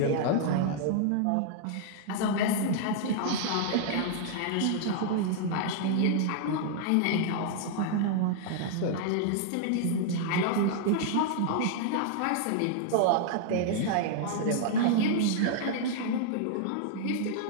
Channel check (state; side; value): different; both; correlation 0.00